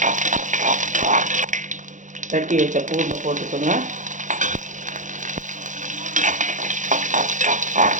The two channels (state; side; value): late; left; 0.36 ms